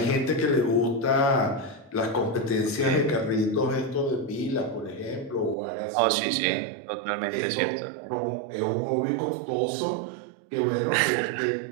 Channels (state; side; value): drops out; left; at 5.6 s